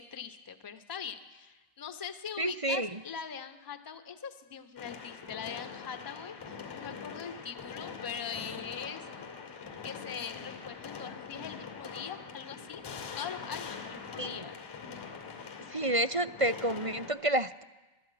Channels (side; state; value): left; late; 1.1 ms